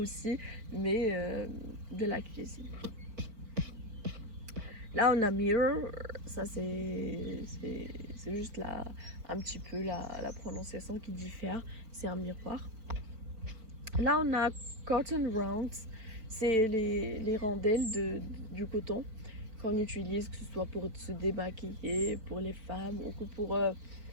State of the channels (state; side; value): late; left; 4.6 ms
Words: mais de la cuisine. Là, on a mirror, ça c'est juste un petit peu la prononciation qui diffère, c'est un miroir. Là, on a cotton rounds, c'est les rondelles du coton qu'on utilise, que ce soit pour se démaquiller, pour les femmes, ou que pour